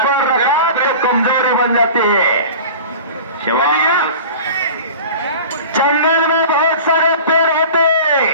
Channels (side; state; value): both; inverted; correlation -0.37